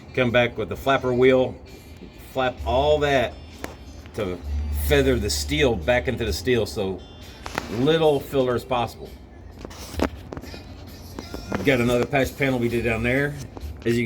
Come back with the flapper wheel, flap all that to feather the steel back into the steel, so little filler as possible. Got another patch panel we did down there. As you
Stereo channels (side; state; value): both; identical; correlation 1.00